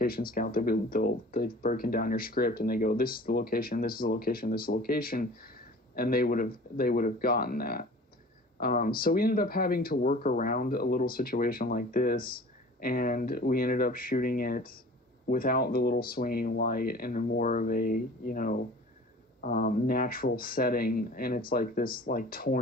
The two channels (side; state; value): both; normal; correlation 0.44